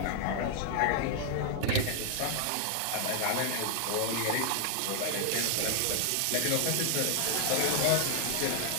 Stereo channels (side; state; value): both; different; correlation 0.00